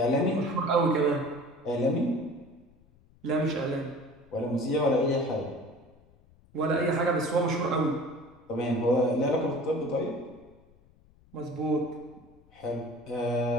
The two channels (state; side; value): noise; left; rumble, 29 dB below the sound